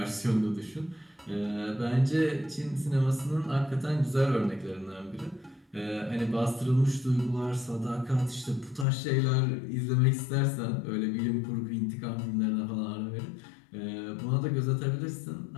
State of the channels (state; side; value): drops out; right; at 8.8 s